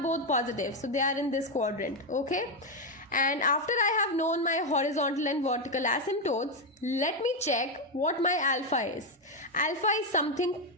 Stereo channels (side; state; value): both; normal; correlation 0.06